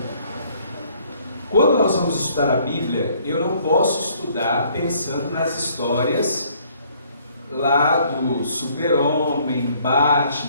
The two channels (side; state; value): both; inverted; correlation -0.62